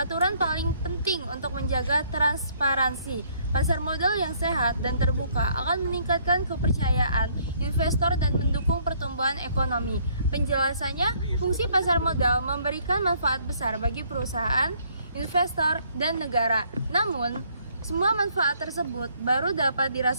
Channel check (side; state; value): both; inverted; correlation -0.64